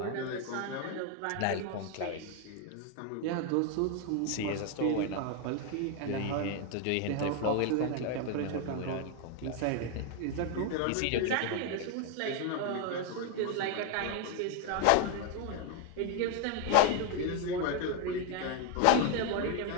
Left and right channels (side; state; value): both; different; correlation 0.01